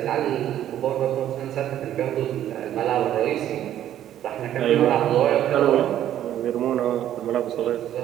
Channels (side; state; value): left; quieter; 11.6 dB